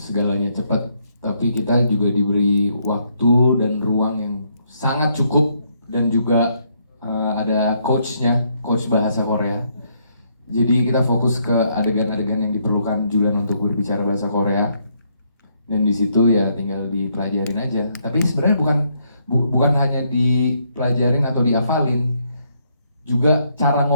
cepat, tapi kita juga diberi waktu dan ruang yang sangat cukup dan juga ada coach bahasa Korea. Jadi kita fokus ke adegan-adegan yang diperlukan Julian untuk berbicara bahasa Korea. Dan di situ ya tinggal dipelajarin aja. Tapi sebenarnya bukan hanya dipelajarin atau dihafalin, juga cara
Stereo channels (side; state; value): both; inverted; correlation -0.73